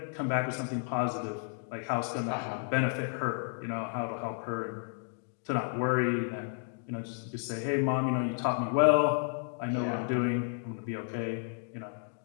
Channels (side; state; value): right; silent; 56 dB below the other